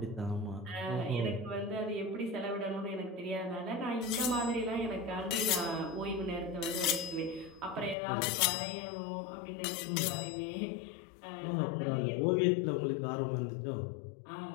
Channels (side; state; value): right; drops out; at 8.0 s